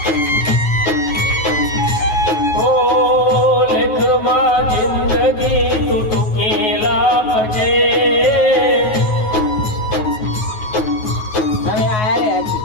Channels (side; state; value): right; late; 9.3 ms